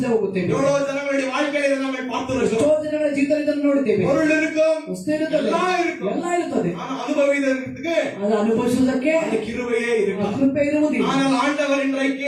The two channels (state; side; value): identical; both; correlation 1.00